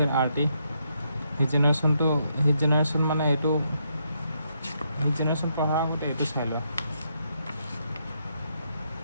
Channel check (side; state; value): both; inverted; correlation -0.77